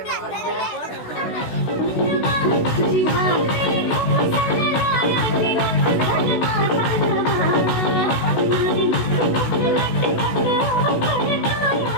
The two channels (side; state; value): right; late; 16 ms